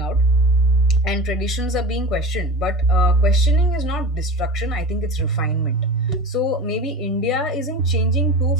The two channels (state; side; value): normal; both; correlation 0.32